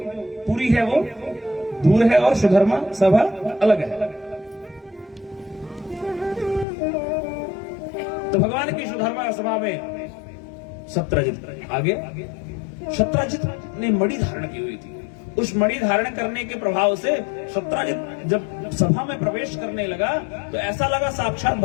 पुरी है वो दूर है और सुधर्मा सभा अलग है। तो भगवान की सुधर्मा सभा में सत्राजित आगे, सत्राजित ने मणि धारण की हुई थी। उस मणि धारण करने के प्रभाव से सत्राजित जब सभा में प्रवेश करने लगा तो ऐसा लगा साक्षात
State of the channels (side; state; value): right; drops out; at 6.7 s